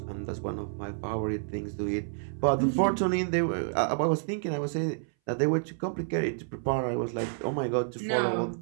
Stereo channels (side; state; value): left; silent; 58 dB below the other